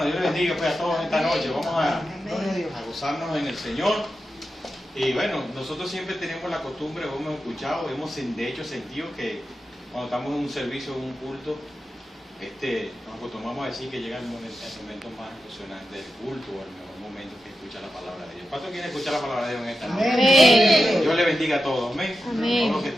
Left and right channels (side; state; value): both; normal; correlation 0.90